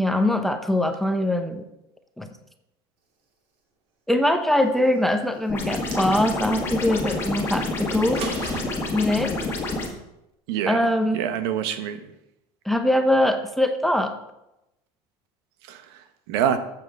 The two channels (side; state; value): both; normal; correlation 0.73